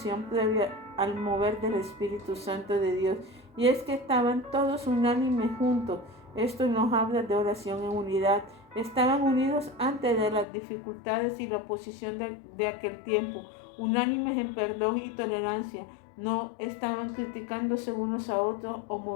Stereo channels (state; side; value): drops out; right; at 10.5 s